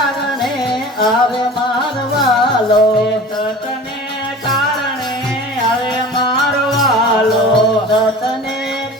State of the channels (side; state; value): both; normal; correlation 0.39